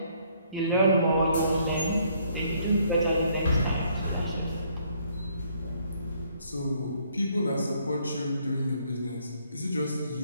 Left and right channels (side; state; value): both; inverted; correlation -0.66